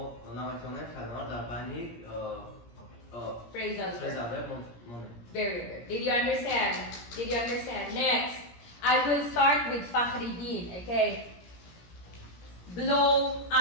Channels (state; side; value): late; right; 17 ms